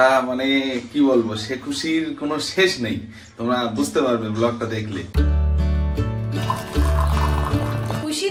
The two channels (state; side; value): identical; both; correlation 1.00